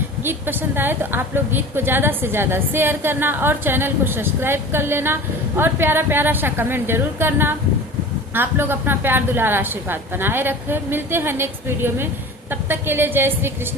गीत पसंद आए तो आप लोग गीत को ज्यादा से ज्यादा शेयर करना और चैनल को सब्सक्राइब कर लेना और प्यारा प्यारा सा कमेंट जरूर करना। आप लोग अपना प्यार दुलार आशीर्वाद बनाए रखें। मिलते हैं नेक्स्ट वीडियो में, तब तक के लिए जय श्री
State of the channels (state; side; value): normal; both; correlation 0.37